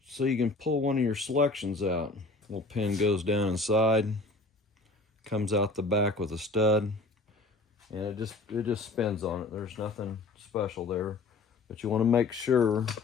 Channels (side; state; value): right; quieter; 3.4 dB